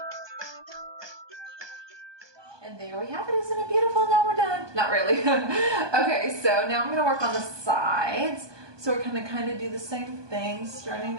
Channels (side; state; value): left; late; 1.2 ms